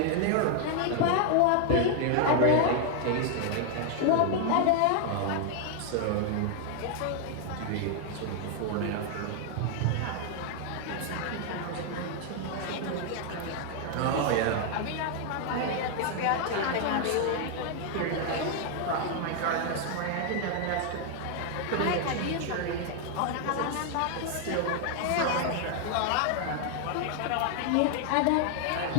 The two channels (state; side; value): different; both; correlation 0.00